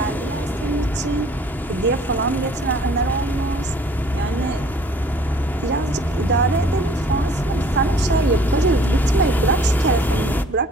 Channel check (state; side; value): normal; both; correlation 0.54